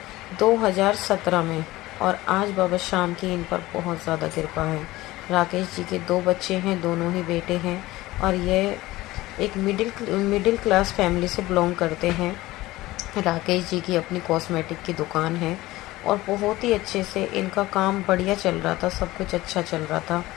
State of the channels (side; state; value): right; quieter; 18.1 dB